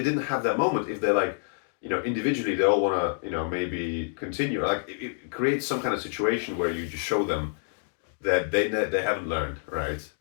didn't have that moment, if they're like, individually they all want to, maybe continue. Like it creates some kind of situation where you just show them that they haven't learned, right?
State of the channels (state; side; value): silent; right; 60 dB below the other